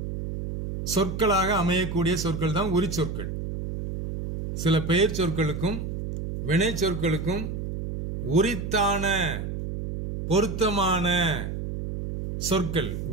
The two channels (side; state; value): right; noise; hum, 5 dB below the sound